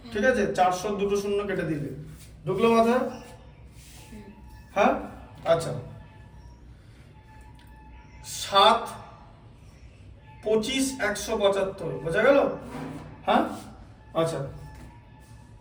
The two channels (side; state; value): both; identical; correlation 1.00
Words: ঠিক আছে? 400 দুটো শূন্য কেটে দিলে, ঢুকলো মাথায়? হ্যাঁ, আচ্ছা। 7 25 175, বোঝা গেল? হ্যাঁ, আচ্ছা,